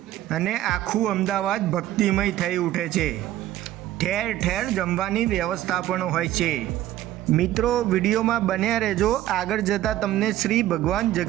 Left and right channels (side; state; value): left; quieter; 13.7 dB